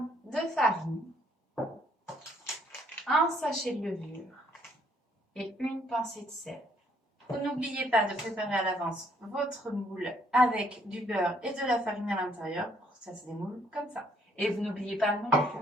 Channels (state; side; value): normal; both; correlation 0.66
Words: de farine, un sachet de levure et une pincée de sel. Vous n'oubliez pas de préparer à l'avance votre moule avec du beurre et de la farine à l'intérieur pour que ça se démoule comme ça. Et vous n'oubliez pas non